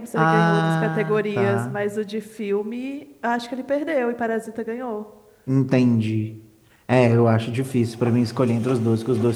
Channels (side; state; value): both; identical; correlation 1.00